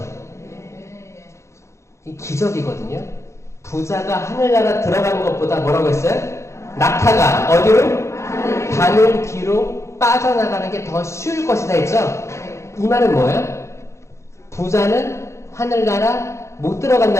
이 기적이거든요. 부자가 하늘나라 들어가는 것보다 뭐라고 했어요? 낙타가 어디로? 바늘 뒤로 빠져나가는 게 더 쉬울 것이다 했죠? 이 말은 뭐예요? 부자는 하늘나라 못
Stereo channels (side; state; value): right; late; 0.14 ms